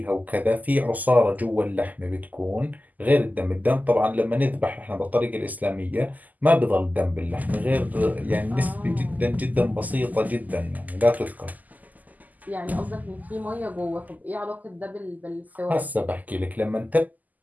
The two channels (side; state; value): left; late; 0.081 ms